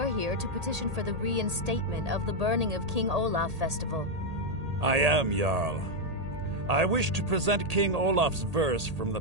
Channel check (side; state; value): left; late; 1.8 ms